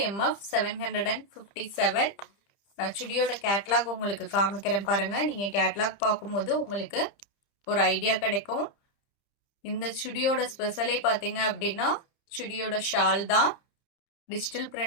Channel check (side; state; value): right; late; 30 ms